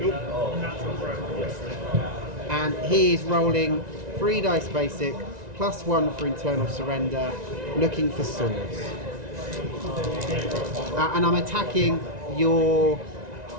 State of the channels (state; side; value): late; left; 1.9 ms